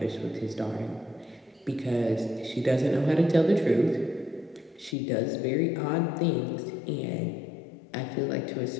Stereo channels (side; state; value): right; drops out; at 5.0 s